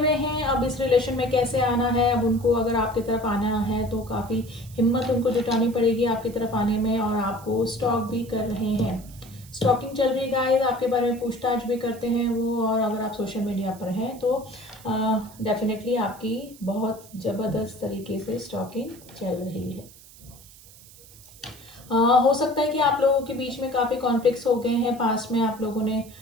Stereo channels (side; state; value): right; noise; hiss, 22 dB below the sound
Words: हैं अब इस रिलेशन में कैसे आना है। अब उनको अगर आपकी तरफ आना है तो काफ़ी हिम्मत उनको जुटानी पड़ेगी आपकी तरफ आने में, और आपको स्टॉक भी कर रहे हैं। स्टॉकिंग चल रही है गाइस, आपके बारे में पूछताछ भी करते हैं वो, और अगर आप सोशल मीडिया पर हैं तो डेफिनेटली आपकी बहुत ज़बरदस्त तरीके से स्टॉकिंग चल रही है। हो सकता है कि आप लोगों के बीच में काफ़ी कॉन्फ्लिक्ट्स हो गए हैं, पास्ट में आप लोगों ने